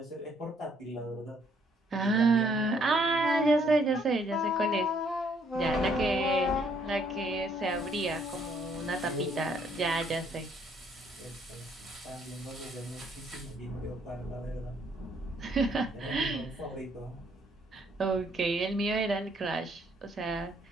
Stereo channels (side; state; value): both; normal; correlation 0.66